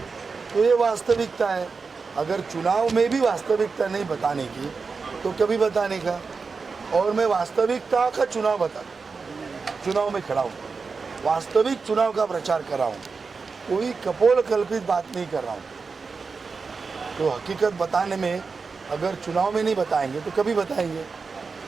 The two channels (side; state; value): left; quieter; 4.7 dB